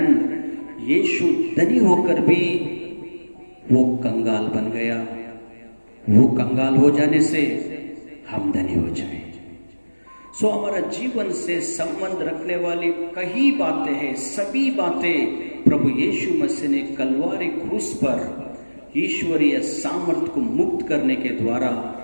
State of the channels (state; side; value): inverted; both; correlation -1.00